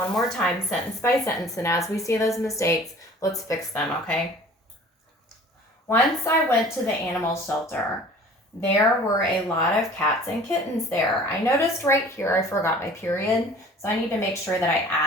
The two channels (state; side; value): normal; both; correlation 0.47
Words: more time, sentence by sentence, and as we see those mistakes, let's fix them, okay? Once I went to the animal shelter. There were a lot of cats and kittens there. I noticed right here I forgot my period, so I need to make sure that I